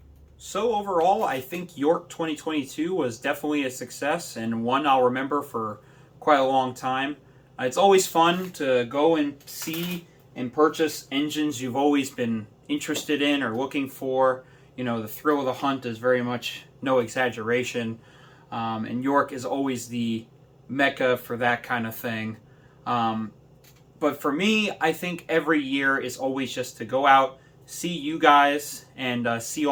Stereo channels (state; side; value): identical; both; correlation 1.00